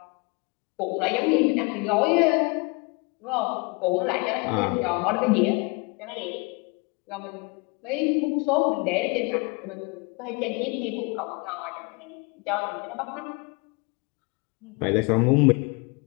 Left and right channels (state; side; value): quieter; right; 29.8 dB